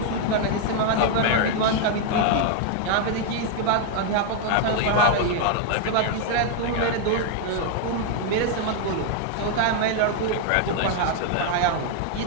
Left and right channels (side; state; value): both; different; correlation 0.00